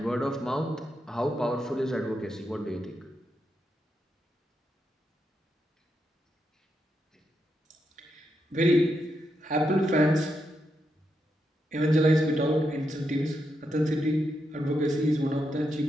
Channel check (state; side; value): normal; both; correlation 0.83